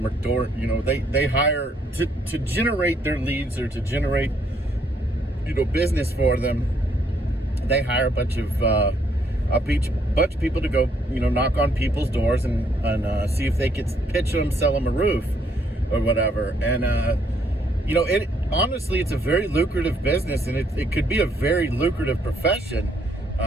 are they hire to generate their leads, or to generate, business for them. They hire a bunch of people to go, knock on people's doors and see if they could pitch them, sell them a roof or whatever. And, honestly, it's a very lucrative business, and it could be a very lucrative profession,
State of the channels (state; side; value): normal; both; correlation 0.70